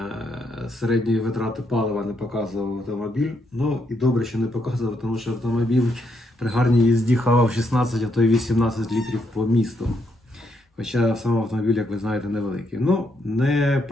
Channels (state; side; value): normal; both; correlation 0.77